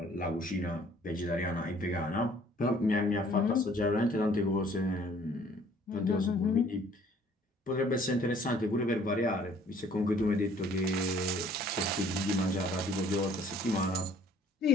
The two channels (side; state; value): both; normal; correlation 0.57